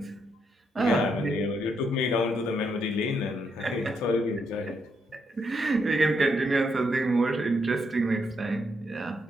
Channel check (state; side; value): normal; both; correlation 0.78